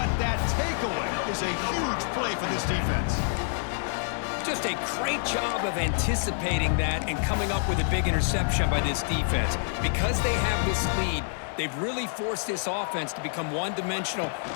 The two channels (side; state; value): right; silent; 60 dB below the other